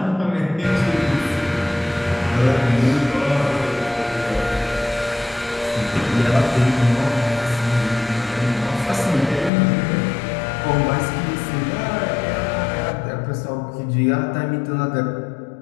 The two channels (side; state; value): right; drops out; at 9.5 s